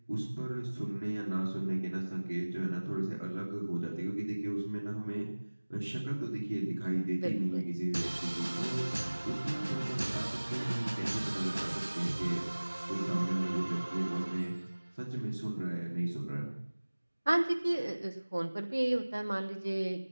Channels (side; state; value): both; inverted; correlation -1.00